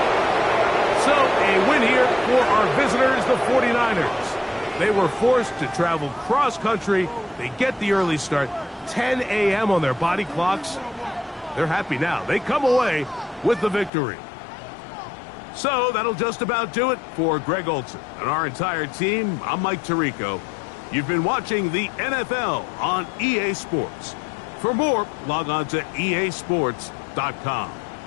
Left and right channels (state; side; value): drops out; right; at 13.9 s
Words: So a win here for our visitors, the 49ers. They were forced to travel cross-country. They get the early start. 10 a.m. on their body clocks. They're happy now. They come away with the victory. So that'll just about do it for Greg Olson and our entire team. I'm Mike Tirico. You've been watching the NFL on EA Sports. For more, log on to easports.com.